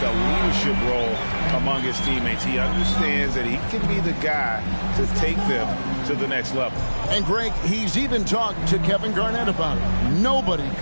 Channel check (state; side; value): inverted; both; correlation -1.00